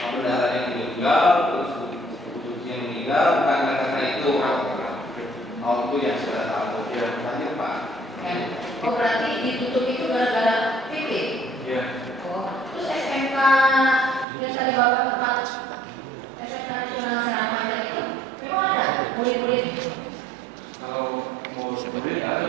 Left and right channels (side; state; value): left; drops out; at 14.2 s